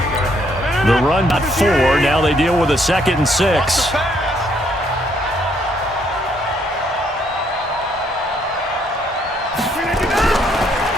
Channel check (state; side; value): normal; both; correlation 0.70